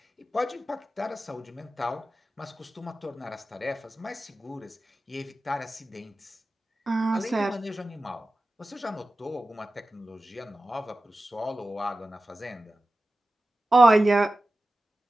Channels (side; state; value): both; normal; correlation 0.94